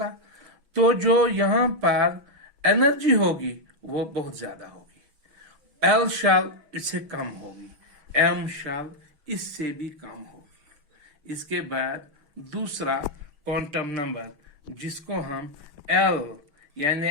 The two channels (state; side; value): late; left; 6.2 ms